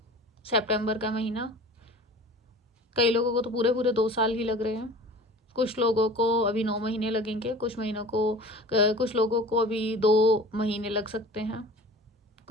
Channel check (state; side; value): normal; both; correlation 0.41